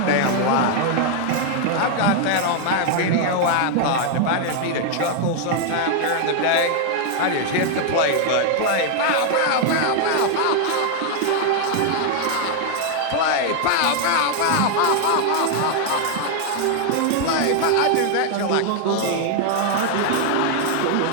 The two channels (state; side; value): different; both; correlation 0.00